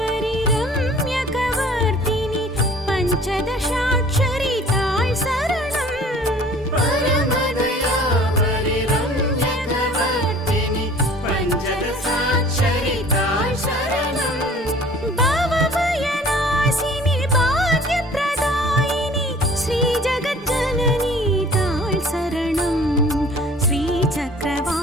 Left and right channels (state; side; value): normal; both; correlation 0.49